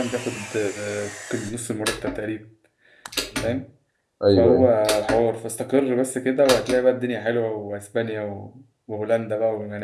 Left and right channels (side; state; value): both; identical; correlation 1.00